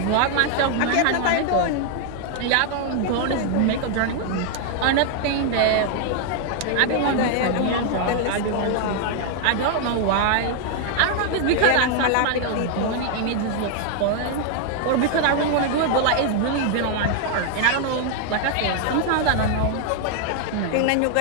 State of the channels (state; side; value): different; both; correlation 0.00